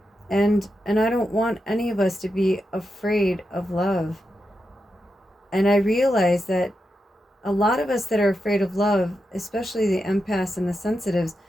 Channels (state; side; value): normal; both; correlation 0.87